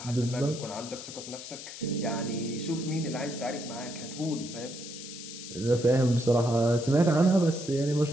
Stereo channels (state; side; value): noise; left; hiss, 11 dB below the sound